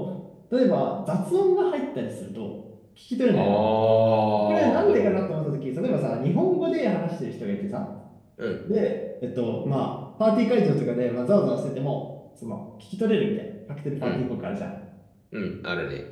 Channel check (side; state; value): both; identical; correlation 1.00